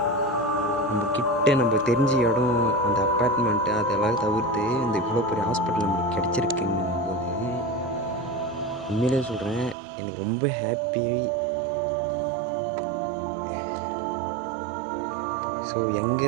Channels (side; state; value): left; drops out; at 9.8 s